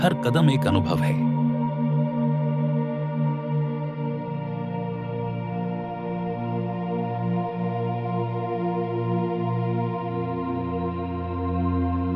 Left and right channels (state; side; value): identical; both; correlation 1.00